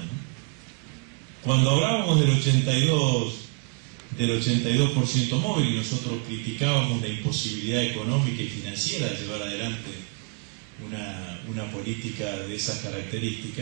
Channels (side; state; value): left; quieter; 32.8 dB